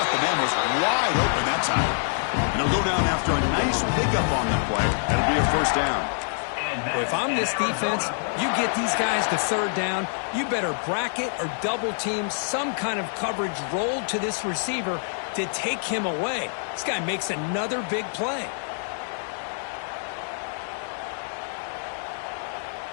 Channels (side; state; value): right; silent; digital silence